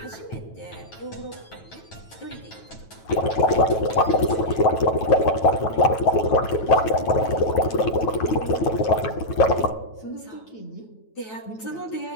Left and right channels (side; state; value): right; late; 9.2 ms